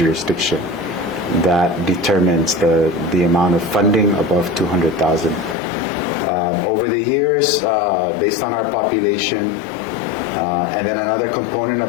That determines the amount of funding above $200,000. Over the years, based on our population, and then another component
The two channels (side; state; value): right; drops out; at 5.6 s